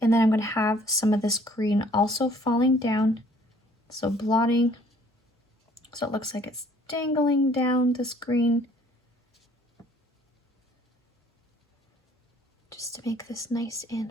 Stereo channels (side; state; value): both; normal; correlation 0.58